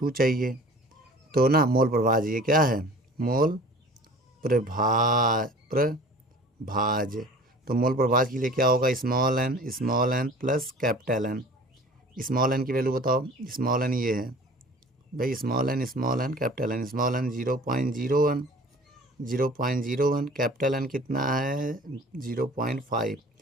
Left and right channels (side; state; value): both; normal; correlation 0.45